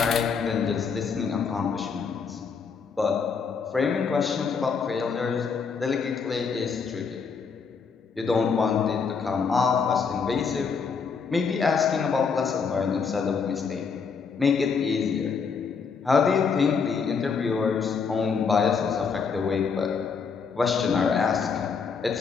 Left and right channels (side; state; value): right; quieter; 5.7 dB